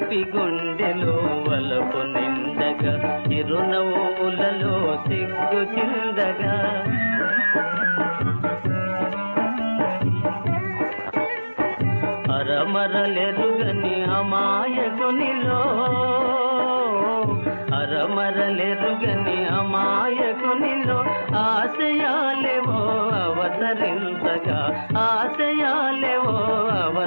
గుండెలో వలపు నిండగా చిరునవ్వులలో సిగ్గు చిందగా అరమరలెరుగని అమాయకునిలో అరమరలెరుగని అమాయకునిలో ఆశయాలేవో అవతరించగా ఆశయాలేవో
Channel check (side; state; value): both; inverted; correlation -1.00